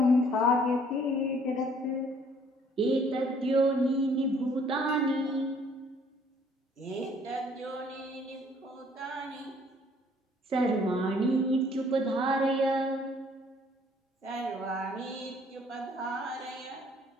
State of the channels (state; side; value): normal; both; correlation 0.60